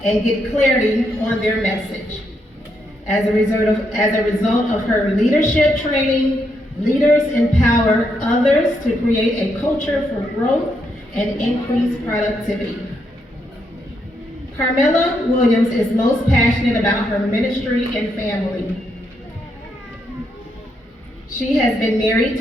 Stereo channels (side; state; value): both; normal; correlation 0.79